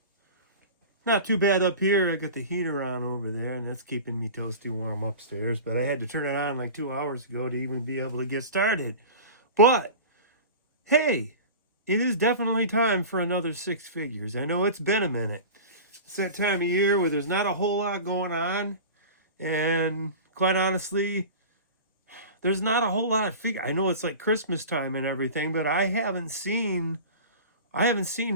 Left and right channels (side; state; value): both; inverted; correlation -0.34